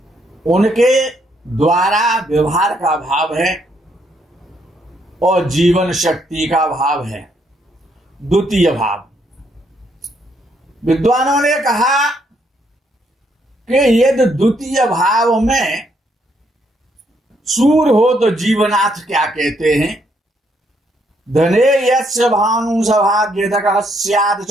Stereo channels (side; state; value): both; normal; correlation 0.73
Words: उनके द्वारा व्यवहार का भाव है और जीवन शक्ति का भाव है द्वितीय भाव। विद्वानों ने कहा कि यदि द्वितीय भाव में सूर्य हो तो जीवनाथ क्या कहते हैं, धने यस्य भानु सभाग्यतकः स्यात्